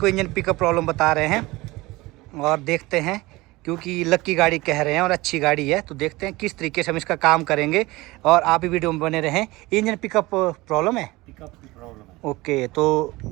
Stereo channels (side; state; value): left; quieter; 20.9 dB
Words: इंजन पिकअप प्रॉब्लम बता रहे हैं और देखते हैं, क्योंकि लकी गाड़ी कह रहे हैं और अच्छी गाड़ी है, तो देखते हैं किस तरीके से हम इसका काम करेंगे और आप भी वीडियो में बने रहें। इंजन पिकअप प्रॉब्लम है? पिकअप की प्रॉब्लम है। ओके, तो